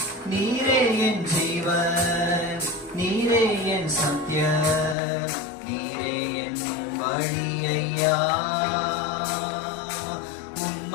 நீரே என் ஜீவன், நீரே என் சத்தியம், நீரே என் வழி ஐயா.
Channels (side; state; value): right; drops out; at 5.0 s